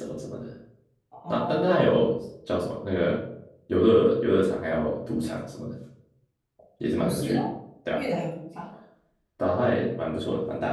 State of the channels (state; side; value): identical; both; correlation 1.00